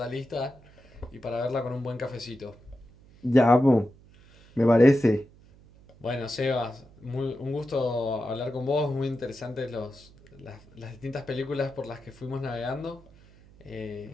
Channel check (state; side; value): noise; right; hum, 25 dB below the sound